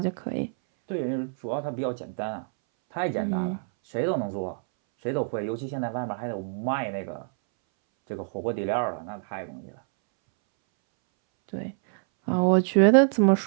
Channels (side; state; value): left; silent; 61 dB below the other